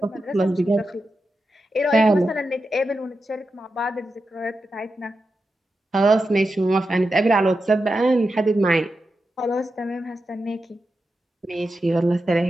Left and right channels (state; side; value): normal; both; correlation 0.89